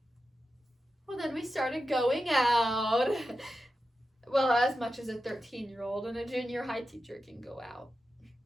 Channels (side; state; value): both; normal; correlation 0.91